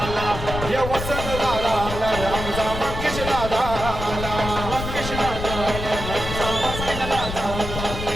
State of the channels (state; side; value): noise; left; rumble, 6 dB below the sound